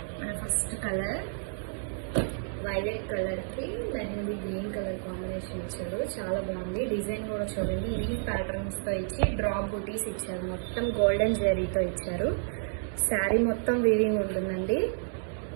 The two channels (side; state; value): left; silent; digital silence